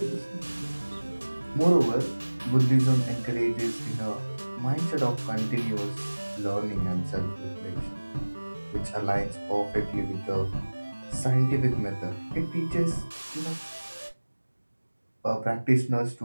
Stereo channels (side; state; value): both; inverted; correlation -1.00